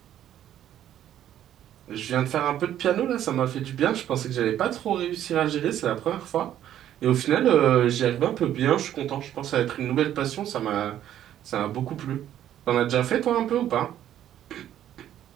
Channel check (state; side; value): quieter; left; 11.3 dB